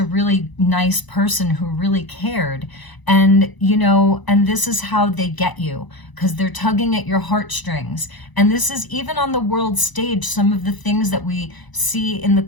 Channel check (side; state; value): right; late; 1.0 ms